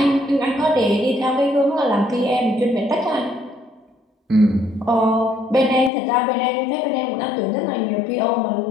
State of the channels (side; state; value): right; drops out; at 5.9 s